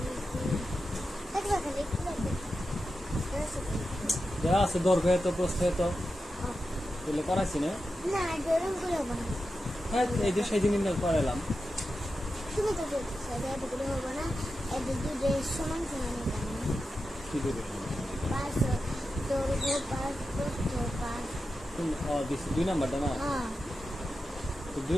দেওয়া আছে দৈর্ঘ্য এত প্রস্থ এত তাহলে করাইছি না হ্যাঁ এই যে সেই দিন করাইলাম তুমি তো হবো না সমান সমান কি দেবে পাঁচ দৈর্ঘ্য পাঁচ প্রস্থ পাঁচ দুই নাম্বারটা না তো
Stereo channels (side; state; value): both; normal; correlation 0.90